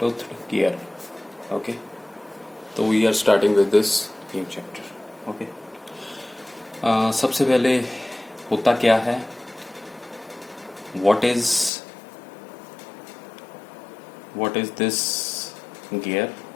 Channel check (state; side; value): drops out; right; at 11.7 s